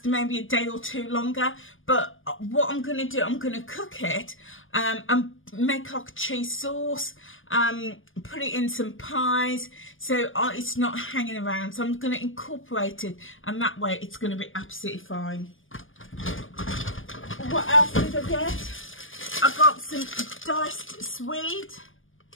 maybe a day or 2 longer. But what I'm going to do, I'm going to cook it and make like a cheese sauce, put it in some pies, so it's not hanging around. So I'm going to incorporate it, and that way it's going to be absolutely fine. What else did I get? I got some diced swede,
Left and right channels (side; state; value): right; late; 0.58 ms